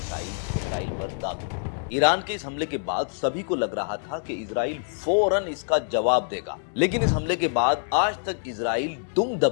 इजराइल पर दाग दी। ईरान के इस हमले के बाद सभी को लग रहा था कि इजराइल फौरन इसका जवाब देगा, लेकिन इस हमले के बाद आज तक इजराइल दुम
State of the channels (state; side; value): silent; right; digital silence